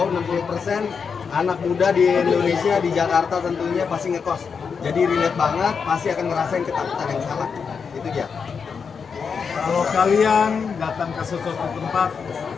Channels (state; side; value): quieter; right; 5.9 dB